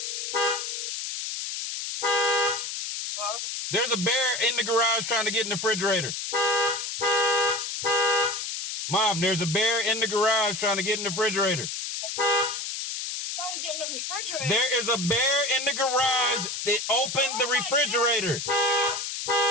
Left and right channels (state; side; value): noise; left; hiss, 5 dB below the sound